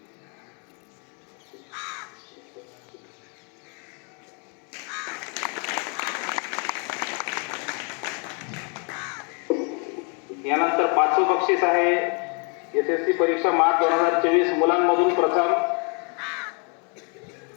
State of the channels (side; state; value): right; quieter; 36.1 dB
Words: यानंतर पाचवं बक्षीस आहे एसएससी परीक्षा मार्च 2024 मुलांमधून प्रथम.